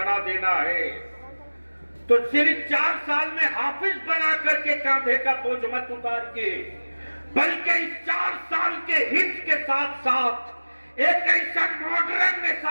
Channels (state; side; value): inverted; both; correlation -1.00